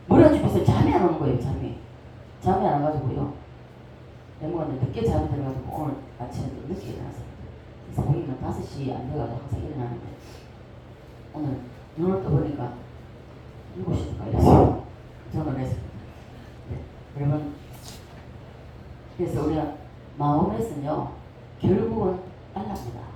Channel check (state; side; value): identical; both; correlation 1.00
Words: 머리가 좁혀서 잠이 안 오는 거예요. 잠이 안 와가지고요 내먹었는데 늦게 잠이 들어가지고 오늘 아침에 또 늦게 일어났어요. 그래서 보기는 5시 안 돼가지고 항상 일어나는데 오늘 눈을 떠보니까 7시인가 이랬어요. 저는 했습니다. 네. 여러분 그래서 우리가 마음에서는요 결국은 알랍니다.